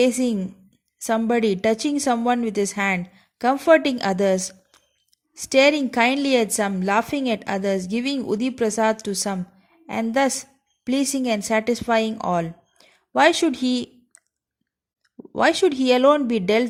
somebody, touching someone with his hand, comforting others, staring kindly at some, laughing at others, giving Udi Prasad to some, and thus pleasing and satisfying all. Why should he alone be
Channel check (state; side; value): identical; both; correlation 1.00